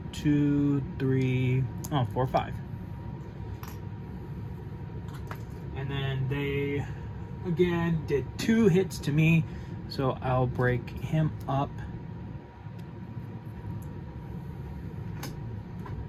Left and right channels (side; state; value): both; identical; correlation 1.00